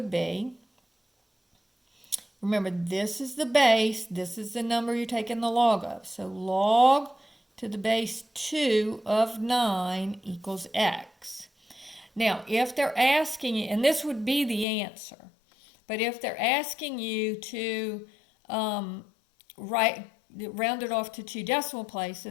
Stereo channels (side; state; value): right; drops out; at 14.7 s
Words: be, remember, this is the base, this is the number you're taking the log of. So log to the base 2 of 9 equals x. Now, if they're asking you, and this would be the answer, but if they're asking you to round it off to 2 decimal